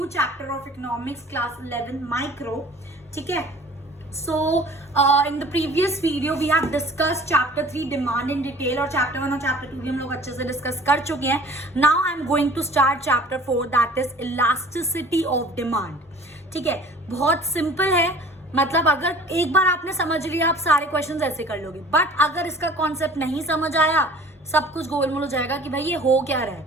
chapter of economics class 11 micro. ठीक है? So in the previous video we have discussed chapter 3 demand in detail और chapter 1 और chapter 2 भी हम लोग अच्छे से discuss कर चुके हैं. Now I'm going to start chapter 4 that is elasticity of demand. ठीक है? बहुत simple है. मतलब अगर एक बार आपने समझ लिया आप सारे क्वेश्चंस ऐसे कर लोगे. बट अगर इसका कॉन्सेप्ट नहीं समझ आया सब कुछ गोलमोल हो जाएगा कि भाई ये हो क्या रहा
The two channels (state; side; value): normal; both; correlation 0.47